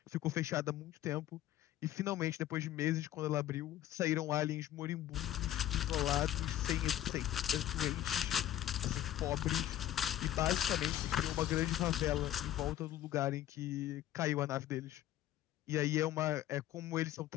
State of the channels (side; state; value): right; quieter; 12.8 dB